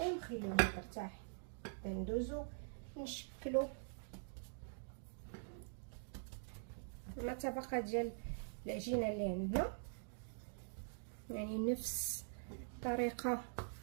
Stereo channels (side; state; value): left; silent; digital silence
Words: ترتاح. ندوزو نشكلوا مع طبقه ديال العجينه اللي عندنا، يعني نفس الطريقه